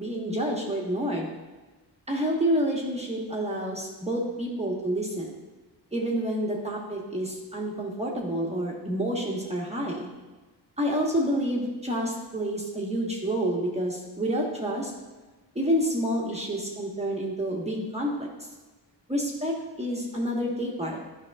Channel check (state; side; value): normal; both; correlation 0.33